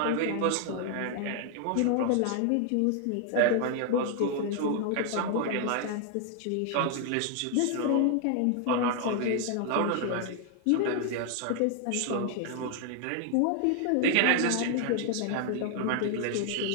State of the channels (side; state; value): both; different; correlation 0.00